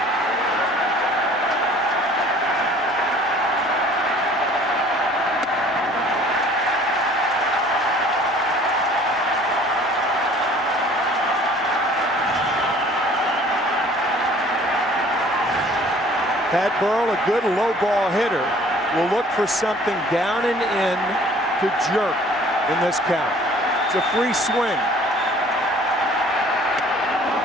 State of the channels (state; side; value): normal; both; correlation 0.52